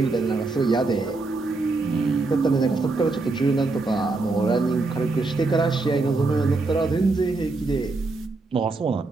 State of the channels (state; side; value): quieter; left; 3.5 dB